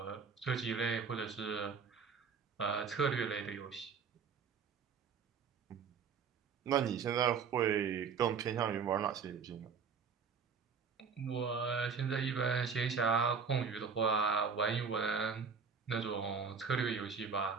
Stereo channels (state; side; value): quieter; left; 5.9 dB